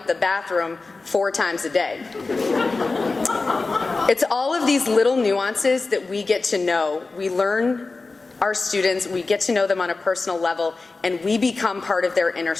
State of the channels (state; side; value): quieter; right; 3.7 dB